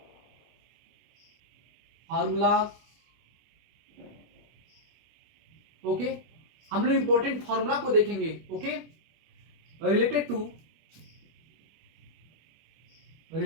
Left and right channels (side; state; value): left; late; 25 ms